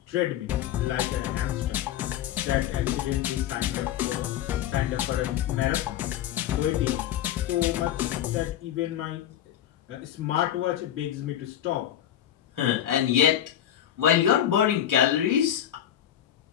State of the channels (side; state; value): right; quieter; 11.2 dB